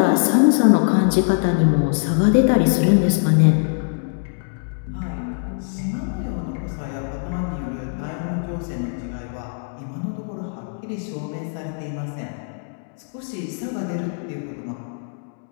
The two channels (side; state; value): right; silent; digital silence